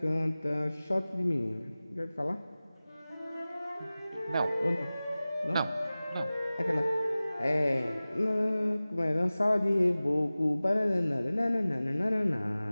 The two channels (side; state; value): both; inverted; correlation -0.98